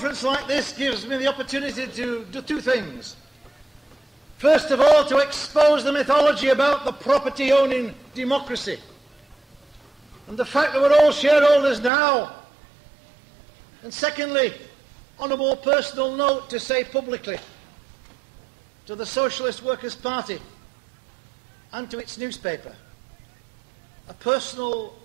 like this gives me the opportunity to do two things. First of all, to expose the mythology about the property-owning democracy and the fact that we're all shareholders now. And secondly, on a more personal note, to say publicly to the Socialist Workers' Party and to its newspaper a personal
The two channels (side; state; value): left; drops out; at 11.9 s